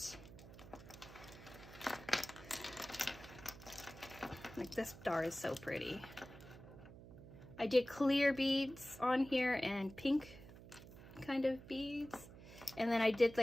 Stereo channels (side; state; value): right; noise; hum, 16 dB below the sound